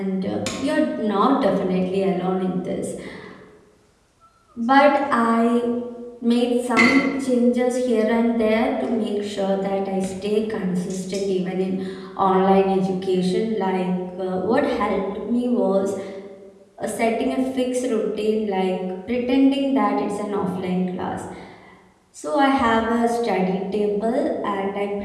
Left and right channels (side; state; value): both; identical; correlation 1.00